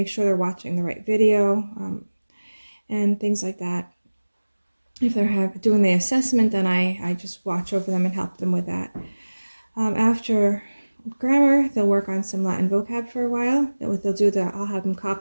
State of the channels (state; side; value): inverted; both; correlation -1.00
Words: sure they're watching the right video, and things like that. If they're doing the assessment, then I just watch over them and help them with that. After grammar, they'll work on some Latin vocab for a while. I'll have them